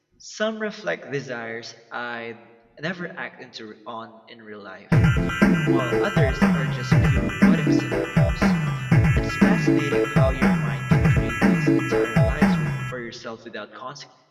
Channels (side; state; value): both; identical; correlation 1.00